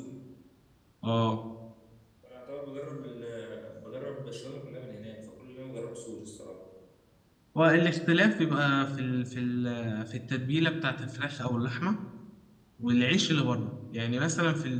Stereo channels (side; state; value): both; identical; correlation 1.00